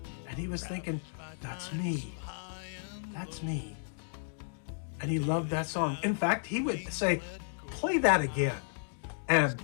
And he was thinking, that's me. That's me. And he loved that song. In fact, he would say, play that again. And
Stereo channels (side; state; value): right; silent; digital silence